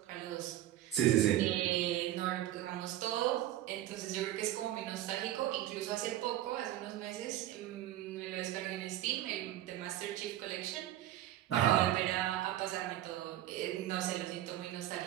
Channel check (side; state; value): left; quieter; 13.5 dB